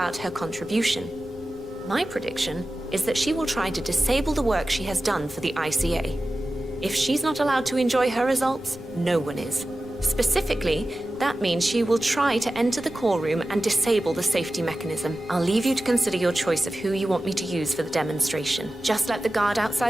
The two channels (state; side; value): noise; left; rumble, 20 dB below the sound